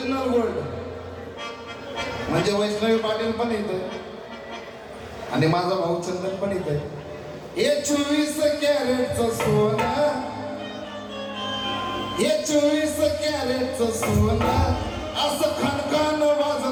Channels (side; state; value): both; identical; correlation 1.00